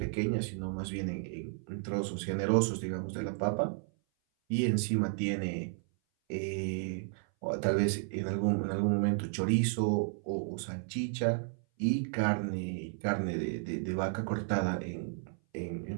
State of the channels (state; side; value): silent; left; 56 dB below the other